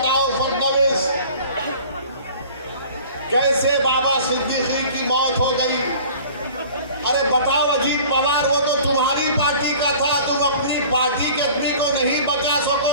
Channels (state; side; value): inverted; both; correlation -0.46